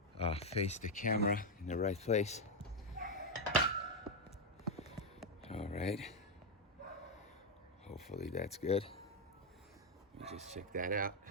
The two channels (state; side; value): normal; both; correlation 0.03